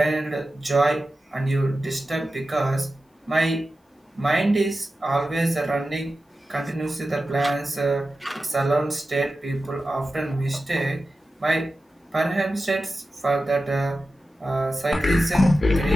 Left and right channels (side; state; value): both; normal; correlation 0.93